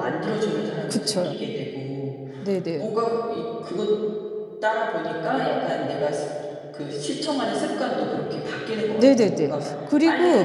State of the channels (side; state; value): both; identical; correlation 1.00